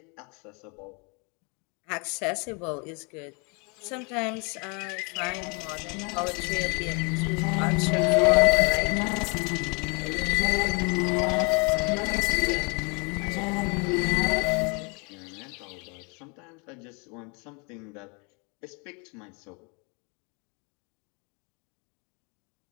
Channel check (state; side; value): quieter; right; 32.7 dB